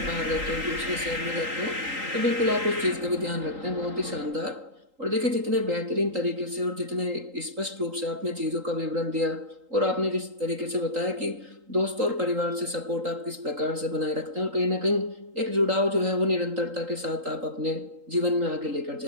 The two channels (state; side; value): late; left; 3.8 ms